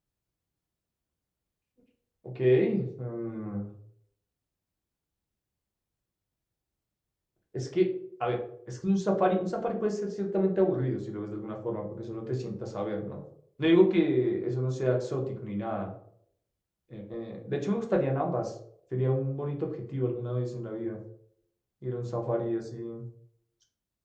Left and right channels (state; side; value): identical; both; correlation 1.00